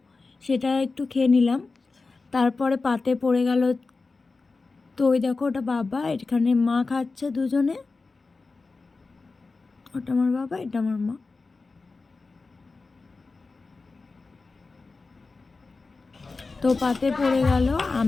সেটা একটু খেয়ে নিলাম। তারপরে পাতে পড়ে গেল, তো ওই দেখো ওটা বাবা, এখানে মা খাচ্ছে দুজনে, ওটা আমার বাবা, এটা আমার মা। তো পাতে পড়ে গেল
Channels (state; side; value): quieter; right; 3.9 dB